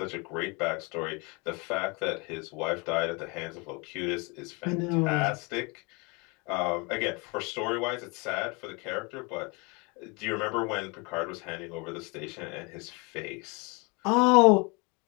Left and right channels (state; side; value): quieter; right; 29.5 dB